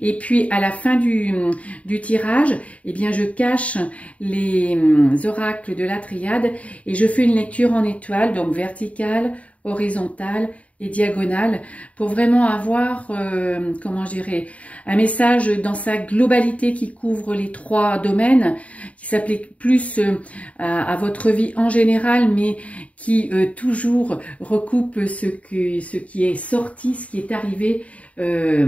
Et puis à la fin du tirage, eh bien je cache les oracles de la triade et je fais une lecture en étoiles, donc verticale, horizontale et diagonale, pour vraiment avoir, comment je dirais, un message dans sa globalité qui couvre les 3 domaines, qui s'applique plus à votre vie en général, mais qui toujours recoupe ce qui est sorti, ce qui est arrivé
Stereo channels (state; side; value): late; right; 0.067 ms